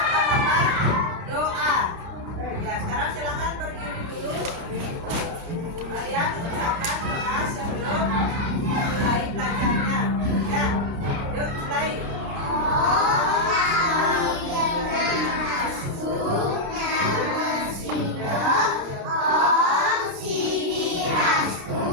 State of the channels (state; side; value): late; left; 29 ms